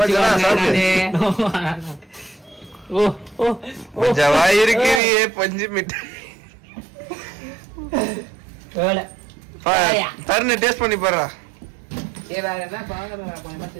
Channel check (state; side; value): drops out; left; at 5.0 s